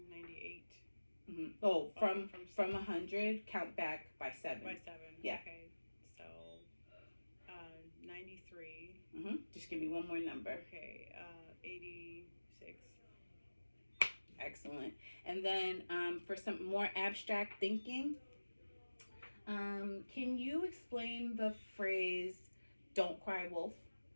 98. Mm-hmm. Oh, from 100, count back by 7. By 7. Yeah. Okay. So 93. Mm-hmm. Just give me one more number. Okay. 86. Excellent. And then for some more abstract thinking, can you explain the phrase "Don't cry wolf"?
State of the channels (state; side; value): inverted; both; correlation -1.00